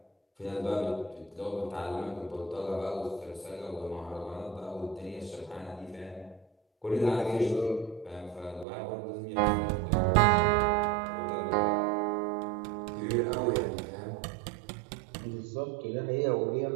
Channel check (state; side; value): drops out; left; at 8.7 s